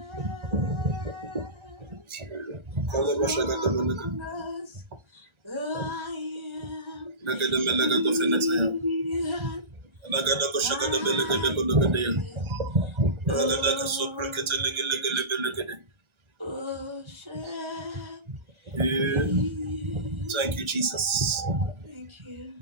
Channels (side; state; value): left; late; 1.3 ms